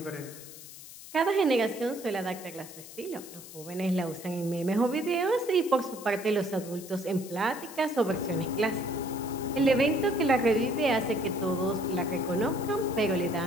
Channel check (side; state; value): left; noise; hiss, 15 dB below the sound